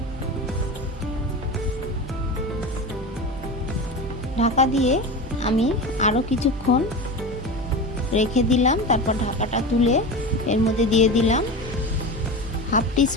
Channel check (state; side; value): normal; both; correlation 0.27